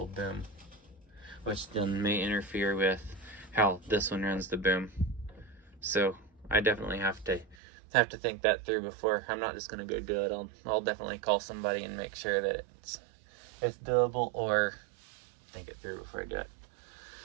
boom, which then may interfere with how this one runs the boom. So I definitely have to think that through before. I'm not just gonna go do it. I'll definitely call somebody and make sure that it's doable, or think it through before I do it.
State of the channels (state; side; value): drops out; left; at 7.6 s